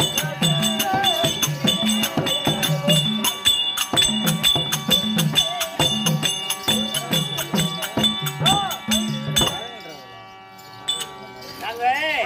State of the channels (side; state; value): both; identical; correlation 1.00